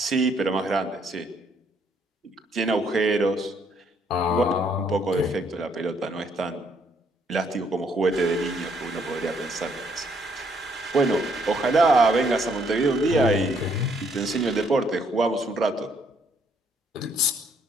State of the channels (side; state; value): both; normal; correlation 0.69